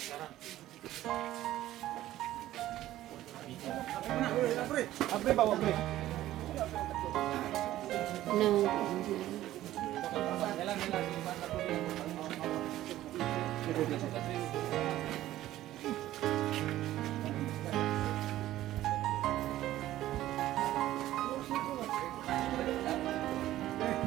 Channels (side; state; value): left; quieter; 14.3 dB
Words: Nabre ba, wabre? No.